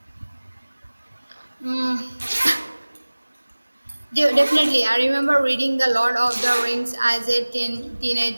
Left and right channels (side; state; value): both; inverted; correlation -1.00